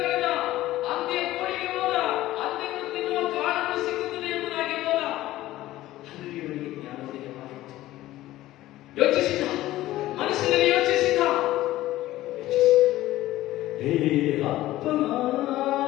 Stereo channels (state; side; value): quieter; right; 15.7 dB